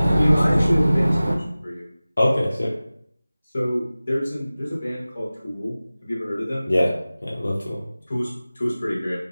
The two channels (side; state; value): both; inverted; correlation -0.97